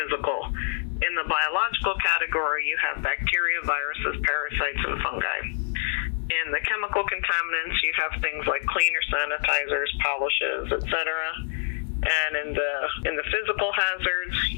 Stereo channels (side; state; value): right; silent; digital silence